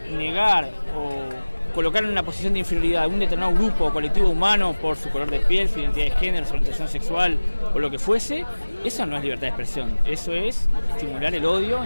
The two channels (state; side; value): inverted; both; correlation -1.00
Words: negar o colocar en una posición de inferioridad a un determinado grupo o colectivo humano por su color de piel, su identidad de género, su orientación sexual o lo que fuese, eso no es libertad de expresión. Eso es estimular el odio,